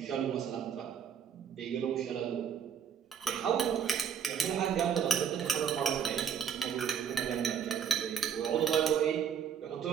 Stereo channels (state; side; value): quieter; left; 7.8 dB